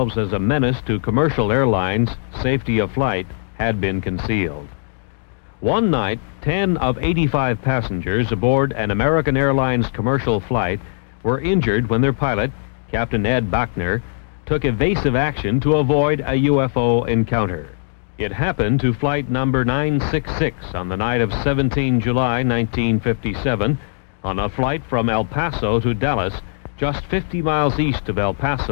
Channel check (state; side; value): silent; right; digital silence